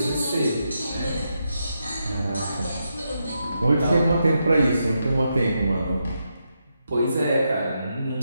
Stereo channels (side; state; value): both; inverted; correlation -0.84